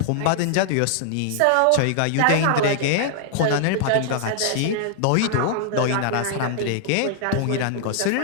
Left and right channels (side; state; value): both; different; correlation -0.01